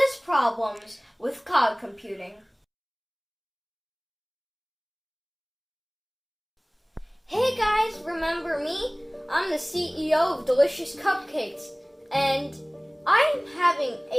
problems with cloud computing. Hey guys, remember me? I'm the CEO of Delicious Cupcakes, and I'm having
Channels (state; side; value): identical; both; correlation 1.00